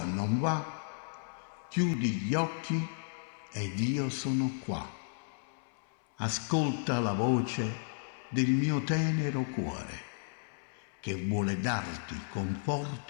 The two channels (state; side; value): silent; right; 55 dB below the other